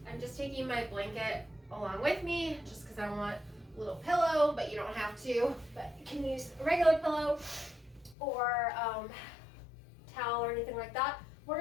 I'm just taking my blanket along with me, just because I want a little pillow, but you don't have to. But you can use a regular pillow or towel or anything like that. We're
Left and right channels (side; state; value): right; drops out; at 8.2 s